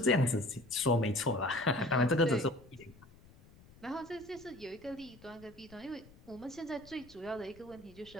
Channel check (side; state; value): left; noise; rumble, 23 dB below the sound